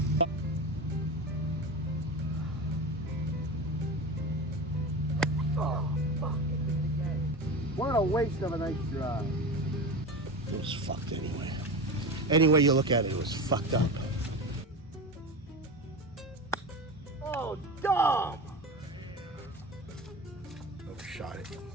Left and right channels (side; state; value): both; normal; correlation 0.26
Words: Oh, fuck. What a waste of a nice drive. It was fucked anyway. Any way you look at it, it was fucked up. Oh, dog! Overshot it.